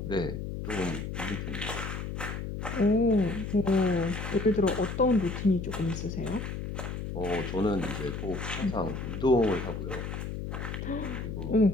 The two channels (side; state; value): left; noise; hum, 5 dB below the sound